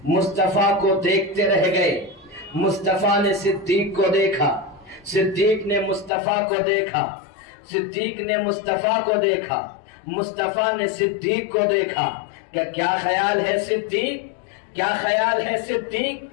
مصطفیٰ کو دیکھتے رہ گئے۔ مصطفیٰ نے صدیق کو دیکھا، صدیق نے مصطفیٰ کو دیکھا، صدیق نے مصطفیٰ کو دیکھا، مصطفیٰ نے صدیق کو دیکھا کہ کیا خیال ہے صدیق، کیا خیال ہے صدیق۔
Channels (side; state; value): right; drops out; at 6.1 s